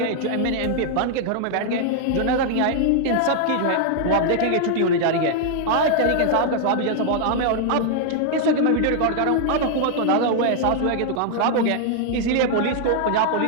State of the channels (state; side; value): different; both; correlation -0.01